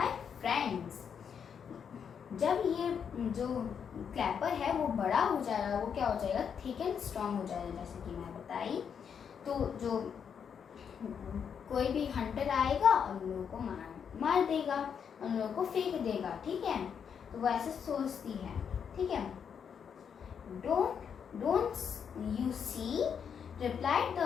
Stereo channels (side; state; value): right; quieter; 7.3 dB